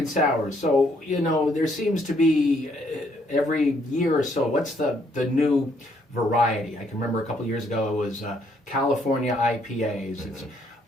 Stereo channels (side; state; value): both; normal; correlation 0.69